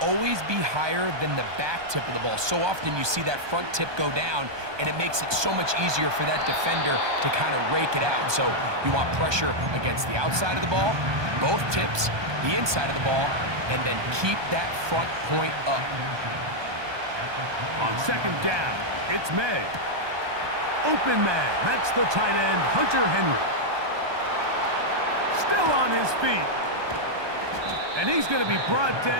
always be higher than the back tip of the ball. So often you see that front tip go down, and it makes it so much easier for that defender to kind of rake it out. So you want pressure against the outside of the ball, both tips, the inside of the ball, and then keep that front point up. On second down, it's May. Open man, that's the tight end, Hunter Henry. Still on his feet. And he's going to be brought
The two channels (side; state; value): left; late; 1.2 ms